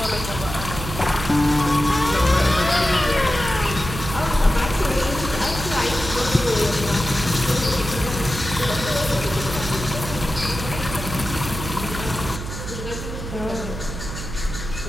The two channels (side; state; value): right; noise; hum, 8 dB below the sound